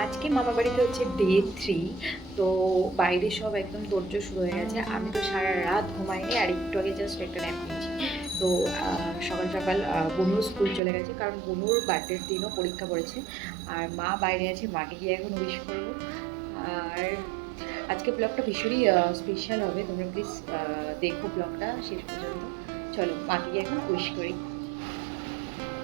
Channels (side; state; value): left; drops out; at 10.8 s